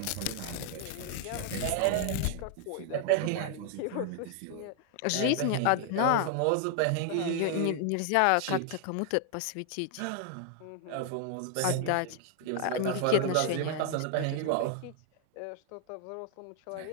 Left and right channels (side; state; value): both; different; correlation 0.00